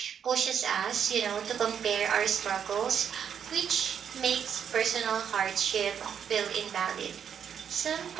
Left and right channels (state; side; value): quieter; left; 8.1 dB